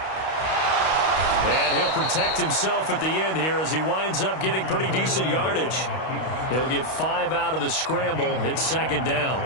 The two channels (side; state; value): right; late; 32 ms